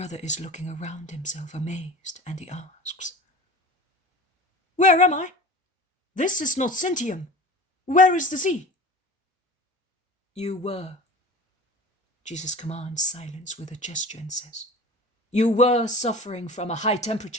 is looking around himself, amazed, and he asks, "Where am I? This is not Sintium. Where is the sea?" "You were." Jesus commands silence with a gesture and says, "You were suffering from a high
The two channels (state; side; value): normal; both; correlation 0.38